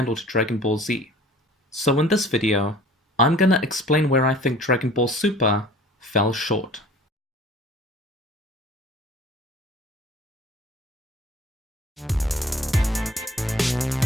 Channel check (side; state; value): both; normal; correlation 0.48